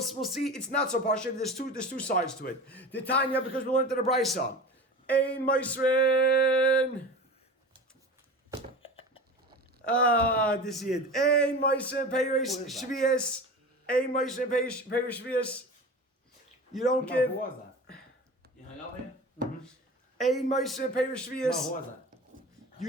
see it's not so pashut. There's two sides to it. The Tanya, because we learned in the Brisa, ein meisrin. This is it. Ein meisrin peiris shvius. Ein meisrin peiris shvius. You don't give. Who was that? You hung up here? Ein Moshe Perish Shvius. Who was that?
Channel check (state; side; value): normal; both; correlation 0.33